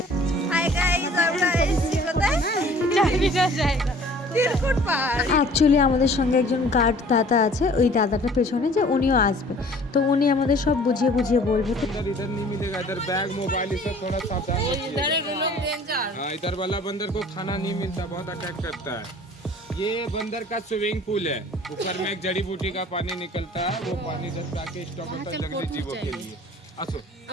হাই গাইস, আমরা এসেছি কোথায়? জানি না জায়গা। তিরকুট পাহাড়। অ্যাকচুয়ালি আমাদের সঙ্গে একজন গার্ড দাদা আছে, ওই দাদাটা পেছনে যে উনিও আসবে, তো উনি আমাদের সব বুঝিয়ে বুঝিয়ে বলবে। তো इधर नहीं मिलेगा, इधर बैग मोबाइल ये सब थोड़ा सावधान इधर रखिएगा। है लोग डेंजर। हाँ, इधर वाला बंदर को खाना नहीं मिलता, बहुत अटैक करता है। ये बंदर का स्विमिंग पूल है, ऊपर में एक जड़ी बूटी का पानी निकलता है, वो पानी इधर जाके स्टॉक होता है जंगली जीवों के लिए। আসো।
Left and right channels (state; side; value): normal; both; correlation 0.51